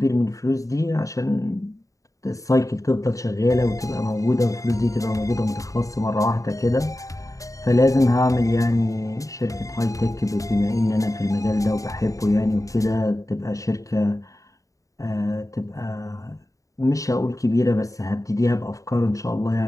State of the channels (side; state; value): right; late; 0.16 ms